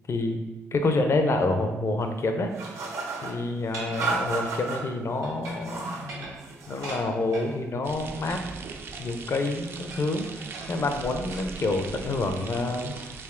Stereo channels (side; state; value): both; normal; correlation 0.69